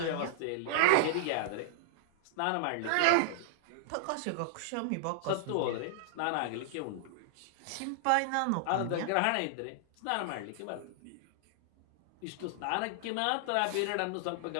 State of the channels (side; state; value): both; different; correlation -0.01